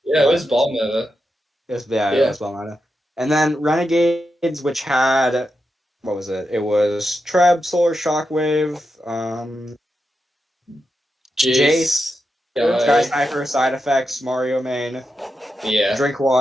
Yeah, it was what? ball meta. Yes, yeah, it Yeah. was Belmada. And then Renegades, which had what was it? It was Treb, Solar Shockwave, Jace, Jace, Sky Guy, Sniper, Side Effects, Mario Main, yeah.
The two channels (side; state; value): both; normal; correlation 0.87